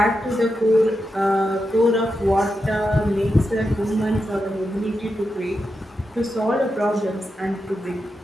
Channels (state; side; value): normal; both; correlation 0.88